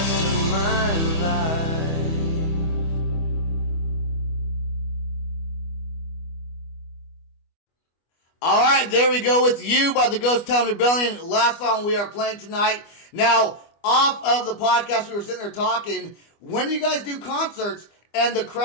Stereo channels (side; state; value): right; late; 25 ms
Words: of my life. All right, there we go with "You" by the Ghost Town Rebellion. Last song we are playing tonight. Now, off of the podcast, we were sitting there talking. When you guys do concerts and the